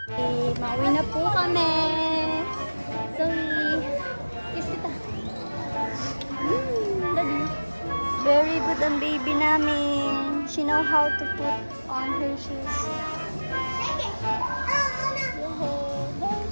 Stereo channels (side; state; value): both; inverted; correlation -1.00